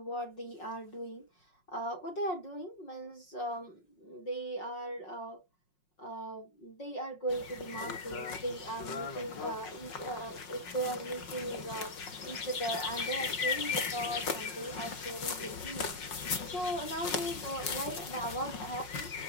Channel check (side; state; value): right; late; 5.5 ms